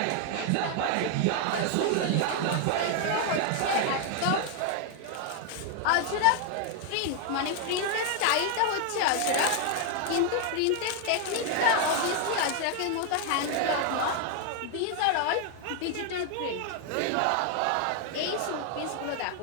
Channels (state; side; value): different; both; correlation 0.00